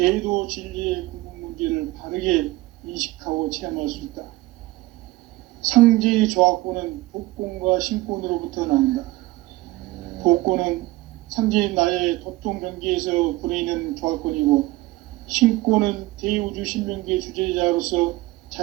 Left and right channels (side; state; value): left; quieter; 19.4 dB